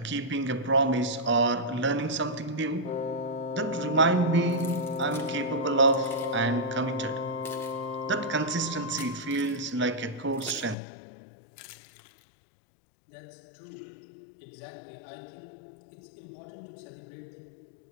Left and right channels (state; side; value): drops out; right; at 10.8 s